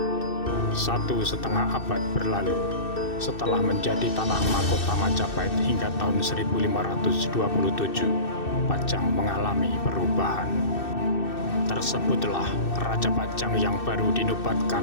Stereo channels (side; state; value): right; late; 2.6 ms